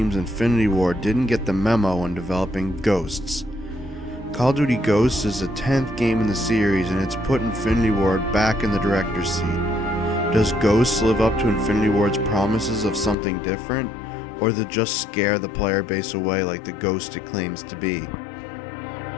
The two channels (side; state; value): right; drops out; at 13.2 s